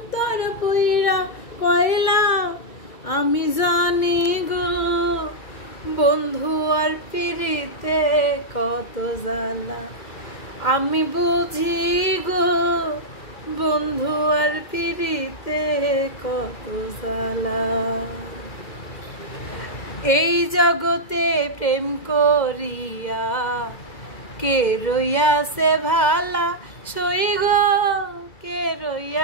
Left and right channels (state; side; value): late; right; 2.3 ms